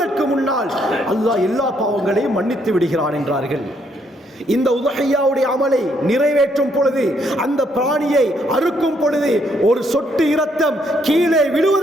முன்னால் அல்லாஹ் எல்லா பாவங்களையும் மன்னித்து விடுகிறான் என்றார்கள். இந்த உதுஹியாவுடைய அமலை நிறைவேற்றும் பொழுது, அந்த பிராணியை அறுக்கும் பொழுது ஒரு சொட்டு இரத்தம் கீழே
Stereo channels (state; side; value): normal; both; correlation 0.71